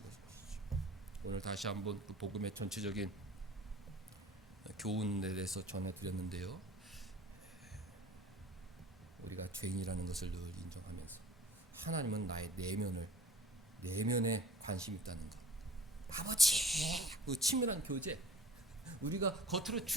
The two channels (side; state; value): both; normal; correlation 0.45